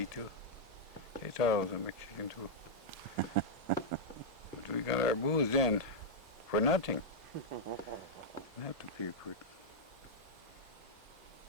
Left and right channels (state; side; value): normal; both; correlation -0.04